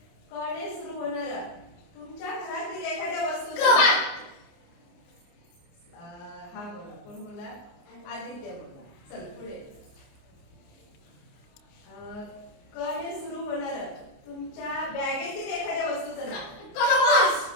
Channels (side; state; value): right; late; 29 ms